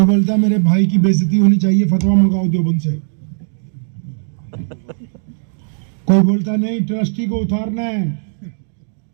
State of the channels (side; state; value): left; silent; digital silence